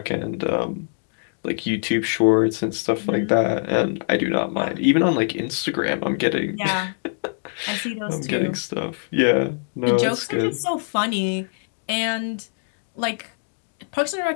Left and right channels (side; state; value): right; silent; digital silence